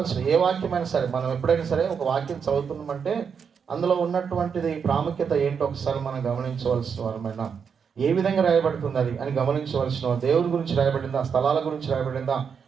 ఏ వాక్యమైనా సరే, మనం ఎప్పుడైనా సరే ఒక వాక్యం చదువుతున్నామంటే అందులో ఉన్నటువంటిది ప్రాముఖ్యత ఏంటో ఒకసారి మనం గమనించవలసిన వారమైనా, ఏ విధంగా రాయబడుతుంది అది అని గమనించవలసిన. దేవుని గురించి రాయబడిందా, స్థలాల గురించి రాయబడిందా,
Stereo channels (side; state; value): left; quieter; 6.6 dB